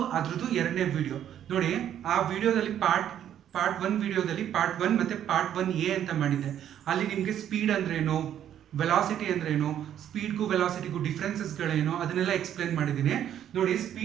ಅದ್ರದ್ದು ಎರಡನೇ ವಿಡಿಯೋ ನೋಡಿ. ಆ ವಿಡಿಯೋದಲ್ಲಿ ಪಾರ್ಟ್ 1 ವಿಡಿಯೋದಲ್ಲಿ ಪಾರ್ಟ್ 1 ಮತ್ತು ಪಾರ್ಟ್ 1A ಅಂತ ಮಾಡಿದ್ದೆ. ಅಲ್ಲಿ ನಿಮಗೆ ಸ್ಪೀಡ್ ಅಂದ್ರೇನು, ವೆಲಾಸಿಟಿ ಅಂದ್ರೇನು, ಸ್ಪೀಡ್ಗೂ ವೆಲಾಸಿಟಿಗೂ ಡಿಫ್ರೆನ್ಸಸ್ಗಳೇನು ಅದನ್ನೆಲ್ಲ ಎಕ್ಸ್ಪ್ಲೇನ್ ಮಾಡಿದ್ದೀನಿ ನೋಡಿ.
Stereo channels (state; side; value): quieter; left; 10.3 dB